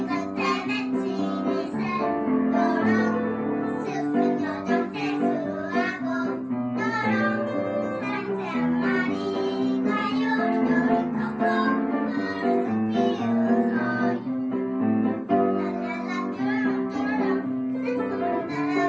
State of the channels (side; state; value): both; identical; correlation 1.00